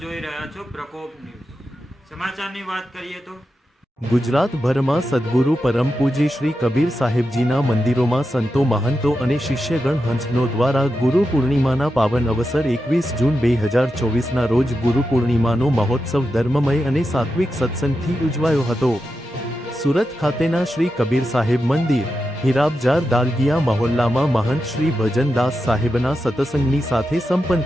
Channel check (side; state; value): both; normal; correlation 0.89